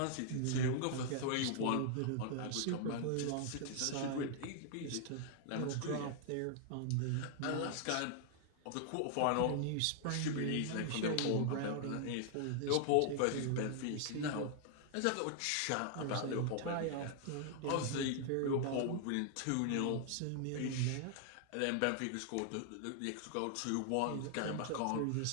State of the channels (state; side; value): different; both; correlation -0.01